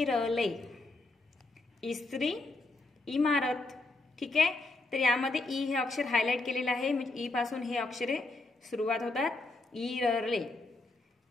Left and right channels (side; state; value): right; quieter; 3.0 dB